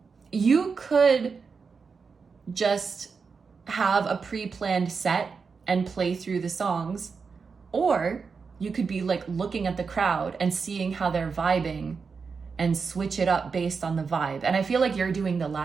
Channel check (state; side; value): quieter; left; 5.2 dB